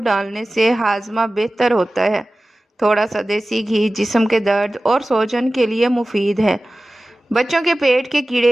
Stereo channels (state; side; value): normal; both; correlation 0.96